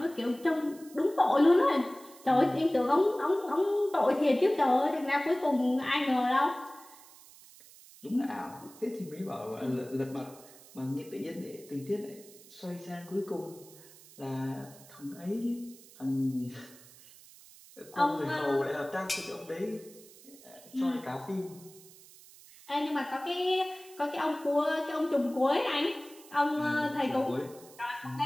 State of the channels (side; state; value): right; noise; hiss, 22 dB below the sound